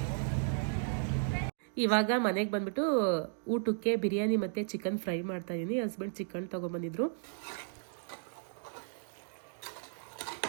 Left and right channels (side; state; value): left; silent; digital silence